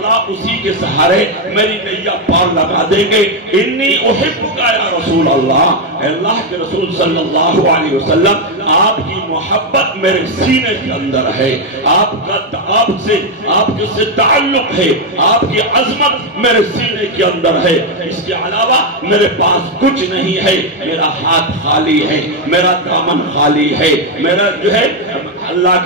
اسی کے سہارے میری نیا پار لگا دیں گے۔ انی احبک یا رسول اللہ، اللہ کے رسول صلی اللہ علیہ وسلم آپ کی محبت میرے سینے کے اندر ہے، آپ کے سے تعلق ہے، آپ کی عظمت میرے سینے کے اندر ہے، اس کے علاوہ میرے پاس کچھ نہیں ہے، میرا ہاتھ خالی ہے، میرا دامن خالی ہے، میرا جو ہے۔ اللہ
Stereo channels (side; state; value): both; normal; correlation 0.04